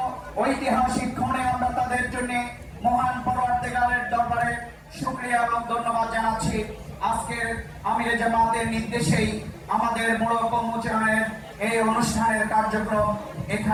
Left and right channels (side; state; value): both; identical; correlation 1.00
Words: ঐতিহাসিক ক্ষণে আমরা তাদের জন্য মহান পরওয়ারদিগারের দরবারে শুকরিয়া এবং ধন্যবাদ জানাচ্ছি। আজকের আমির জামাতের নির্দেশেই আমাদের মোড়ক উন্মোচনের এই অনুষ্ঠানের কার্যক্রম